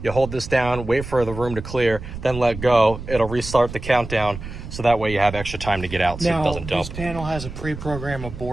you hold this down, wait for the room to clear, then let go. It'll restart the countdown, so that way you have extra time to get out, so it doesn't dump. This panel has a pre-programmed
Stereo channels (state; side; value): noise; right; rumble, 10 dB below the sound